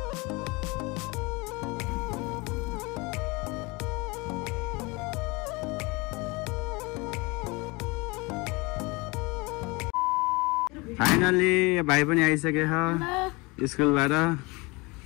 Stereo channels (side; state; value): right; quieter; 25.8 dB